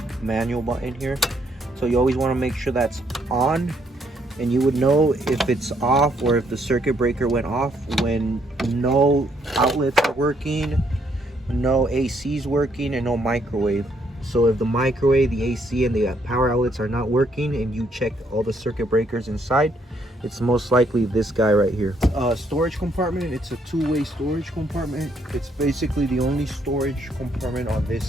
manual button here. So you always want to make sure that's on, and you would know if it's off or if the circuit breaker went off when no outlets are working, no AC is working, and no microwave. So if the microwave, the AC, and the power outlets are not working and you check all the circuit breakers inside, it's most likely this guy right here. Storage compartment, it's a two-way storage compartment. It's basically the only storage compartment on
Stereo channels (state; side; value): normal; both; correlation 0.71